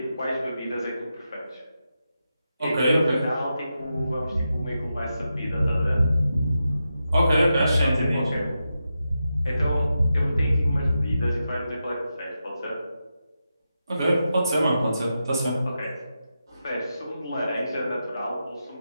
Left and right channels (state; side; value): inverted; both; correlation -0.88